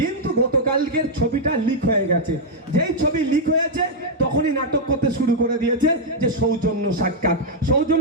গতকালকের ছবিটা লিক হয়ে গেছে। যেই ছবি লিক হয়েছে তখনই নাটক করতে শুরু করে দিয়েছে যে সৌজন্য সাক্ষাৎ।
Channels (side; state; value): both; normal; correlation -0.03